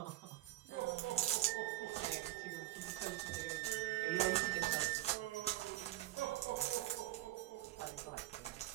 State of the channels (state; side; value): quieter; left; 15.9 dB